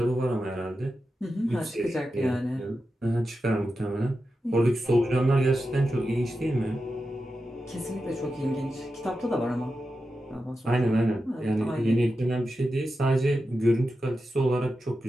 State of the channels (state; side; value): normal; both; correlation 0.90